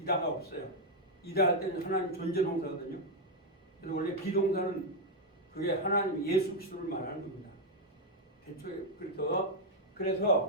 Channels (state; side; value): normal; both; correlation 0.01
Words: 이다가 없어요. 이다 할 때는 하나님 존재 동사거든요. 그래서 원래 비동사는 그게 하나님 예수 그리스도를 말하는 겁니다. 대초에